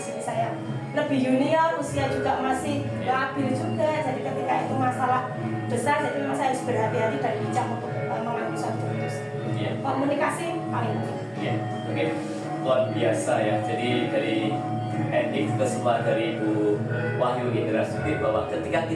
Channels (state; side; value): identical; both; correlation 1.00